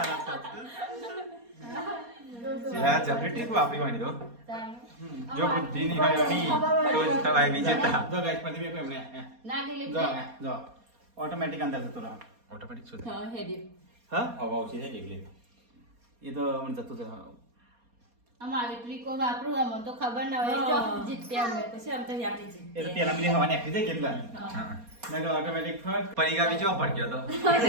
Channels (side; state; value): left; late; 4.2 ms